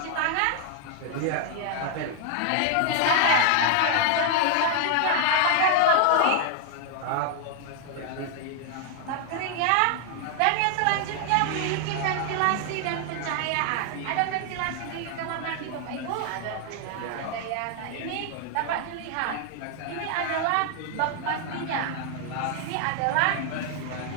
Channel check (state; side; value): different; both; correlation 0.00